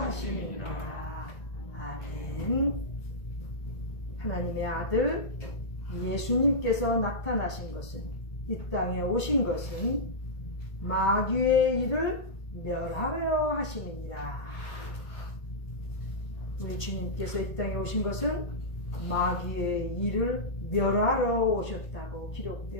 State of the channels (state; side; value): late; right; 1.5 ms